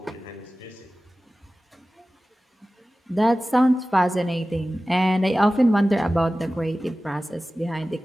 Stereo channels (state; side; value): normal; both; correlation 0.96